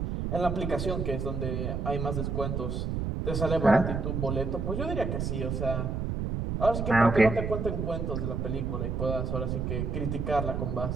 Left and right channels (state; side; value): noise; right; rumble, 2 dB below the sound